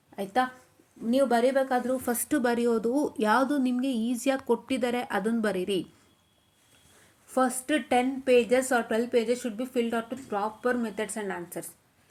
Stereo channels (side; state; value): both; identical; correlation 1.00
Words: ಆಯಿತಾ. ನೀವು ಬರಿಬೇಕಾದ್ರೂ ಫಸ್ಟು ಬರೆಯೋದು ಯಾವುದು ನಿಮಗೆ ಈಸಿಯಾಗಿ ಕೊಟ್ಟಿದ್ದಾರೆ ಅದನ್ನು ಬರೀರಿ. First 10 pages or 12 pages should be filled out with proper methods and answers.